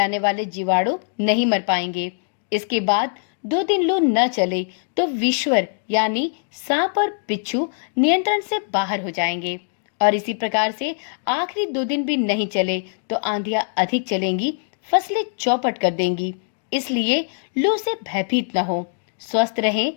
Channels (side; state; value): right; silent; digital silence